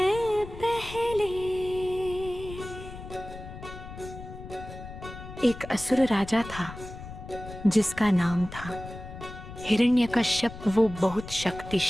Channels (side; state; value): left; noise; rumble, 13 dB below the sound